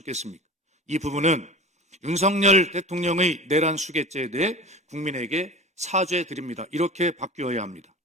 이 부분은 윤석열 대통령의 내란 수괴죄에 대해 국민에게 사죄드립니다. 이렇게 바뀌어야 합니다.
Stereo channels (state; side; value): normal; both; correlation 0.34